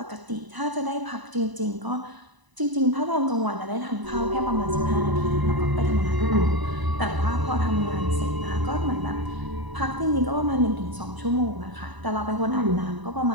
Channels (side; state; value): left; late; 1.0 ms